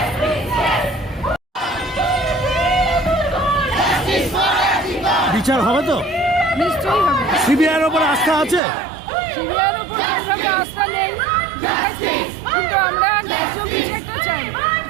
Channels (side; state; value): left; drops out; at 8.6 s